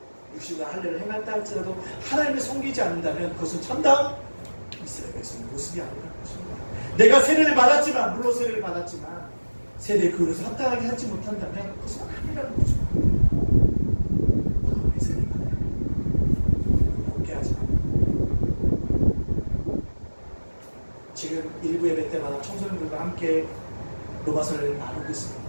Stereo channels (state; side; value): inverted; both; correlation -1.00